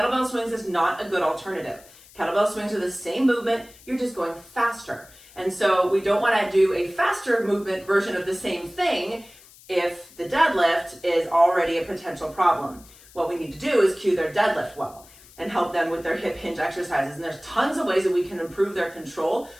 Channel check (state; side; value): noise; left; hiss, 23 dB below the sound